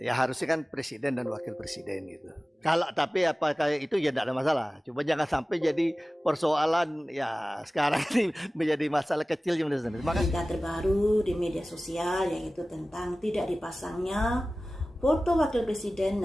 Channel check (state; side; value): normal; both; correlation 0.97